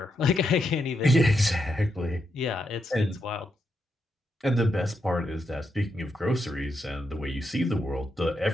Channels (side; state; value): both; normal; correlation 0.82